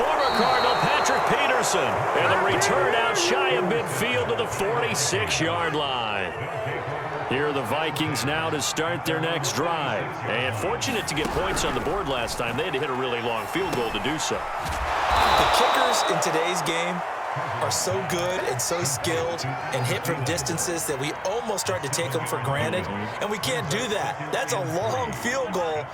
Cardinal, Patrick Peterson. And the return out shy of midfield to the 46-yard line. Here are the Vikings now to start their next drive. And fortunate to get points on the board last time. They had to hit a really long field goal to do so. The kickers in today's game are so good and so skilled and hit from distances that we almost start to take them for granted, and we can't do that. That's a long field goal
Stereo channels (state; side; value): identical; both; correlation 1.00